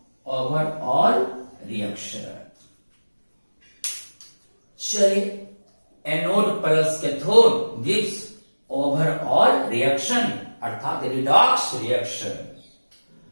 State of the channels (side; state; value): both; inverted; correlation -1.00